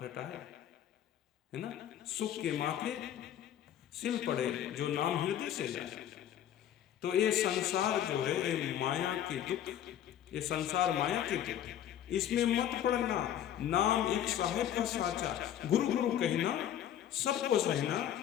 रटाए, है ना, सुख के माथे सिल पड़े, जो नाम हृदय से जाए। तो ये संसार जो है, ये माया के दुख, ये संसार माया के दुख, इसमें मत पड़ना। नाम एक साहेब का साचा, गुरु गुरु कहना सबको सहना,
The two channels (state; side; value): quieter; right; 10.7 dB